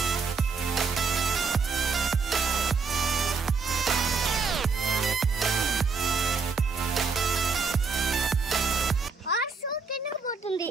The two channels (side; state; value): left; quieter; 4.8 dB